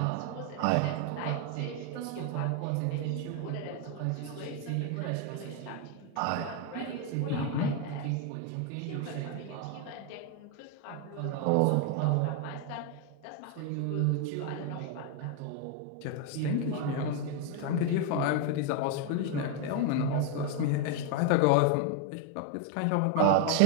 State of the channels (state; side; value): different; both; correlation 0.00